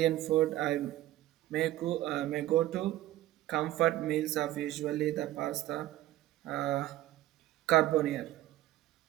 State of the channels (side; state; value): left; quieter; 14.9 dB